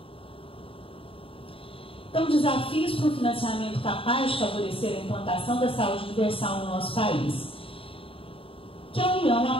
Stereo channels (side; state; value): right; late; 0.27 ms